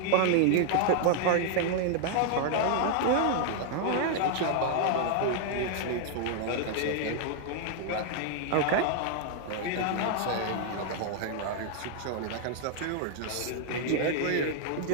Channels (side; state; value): both; different; correlation 0.00